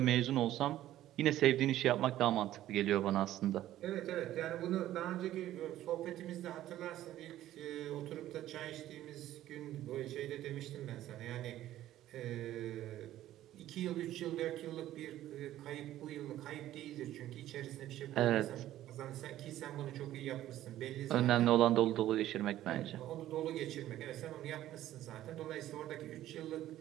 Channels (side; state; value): left; quieter; 13.6 dB